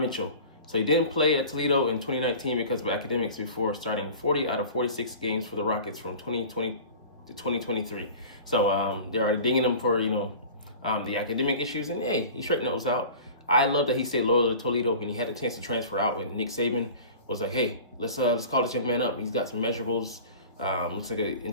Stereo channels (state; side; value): inverted; both; correlation -0.39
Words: Mitchell. So he didn't play at Toledo in 2019 because of academics before starting 40 out of 46 games for the Rockets from 2020 to 2023. So they're already dinging him for, the academic issues, and hey, he straightened those out. I love that he stayed loyal to Toledo when he had the chance to transfer out, when Nick Saban was like, hey, let's call this young man up. He's got some measurables, looks like an